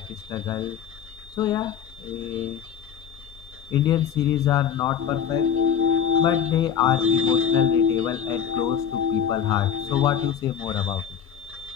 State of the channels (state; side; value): quieter; right; 8.3 dB